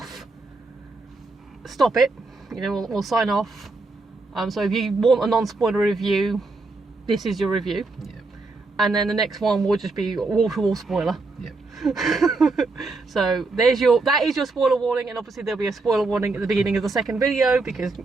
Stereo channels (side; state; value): left; quieter; 3.5 dB